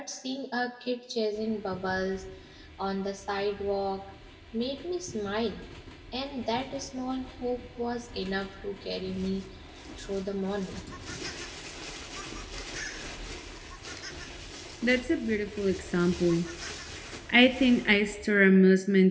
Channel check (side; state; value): both; identical; correlation 1.00